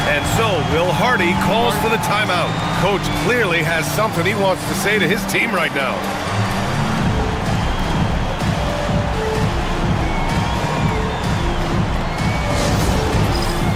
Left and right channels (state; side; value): identical; both; correlation 1.00